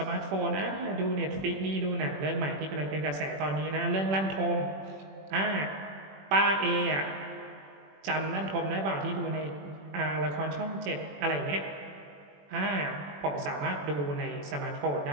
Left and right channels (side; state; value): left; late; 21 ms